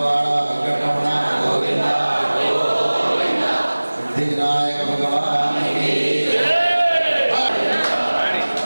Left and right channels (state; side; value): inverted; both; correlation -1.00